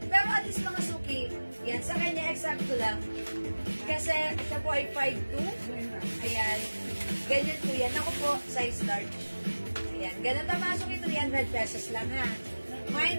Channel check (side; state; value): both; inverted; correlation -1.00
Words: Pero at least mga suki, yan, sa kanya eksakto lang. Kasi siya po ay 5'2". Ayan. Ganyan po yan. Ako po, size large. Ayan. Ganun na mga suki, 300 pesos lang ha.